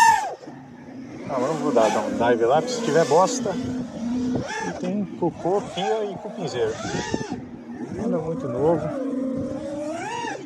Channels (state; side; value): identical; both; correlation 1.00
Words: Agora eu vou dar um dive lá, porque se tiver bosta. E tem cocô, pia e cupinzeiro. Nada muito novo.